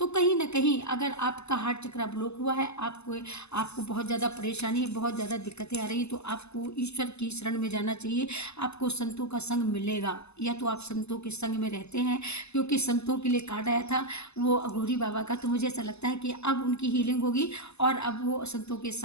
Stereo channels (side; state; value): right; late; 0.80 ms